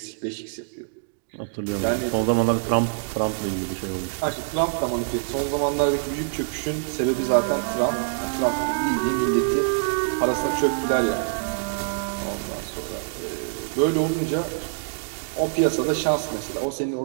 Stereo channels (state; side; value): silent; left; digital silence